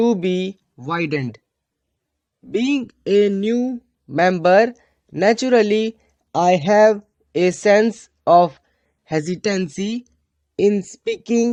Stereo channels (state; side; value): identical; both; correlation 1.00